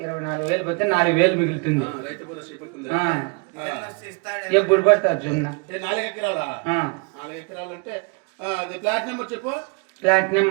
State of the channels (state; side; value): quieter; left; 31.5 dB